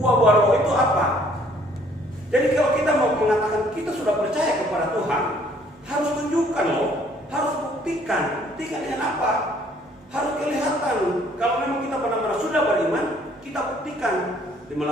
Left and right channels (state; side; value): normal; both; correlation 0.61